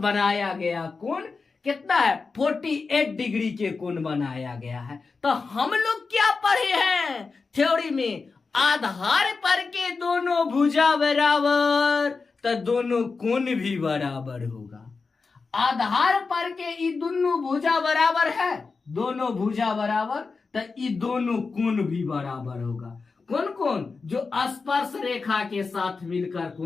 गया कोण कितना है, 48 डिग्री के कोण बनाया गया है। तो हम लोग क्या पढ़े हैं थ्योरी में, आधार पर के दोनों भुजा बराबर तो दोनों कोण भी बराबर होगा। आधार पर के ये दोनों भुजा बराबर है, दोनों भुजा बराबर तो ये दोनों कोण भी बराबर होगा। कौन कौन, जो स्पर्श रेखा के साथ मिलकर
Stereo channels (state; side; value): quieter; right; 4.5 dB